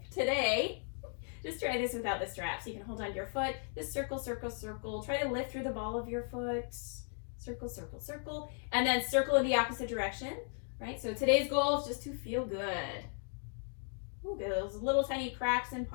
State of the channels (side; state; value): right; silent; 54 dB below the other